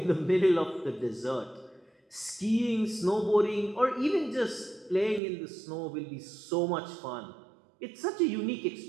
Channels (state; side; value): drops out; left; at 5.2 s